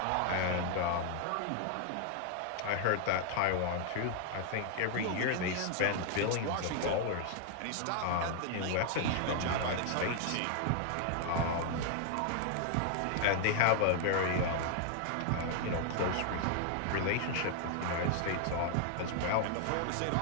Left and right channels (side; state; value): both; different; correlation 0.00